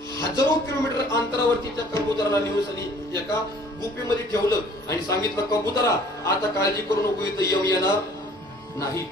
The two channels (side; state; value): both; normal; correlation 0.54